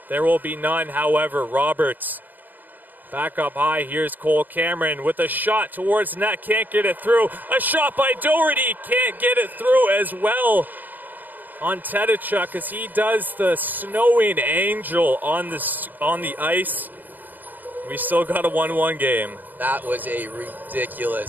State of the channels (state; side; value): late; left; 0.085 ms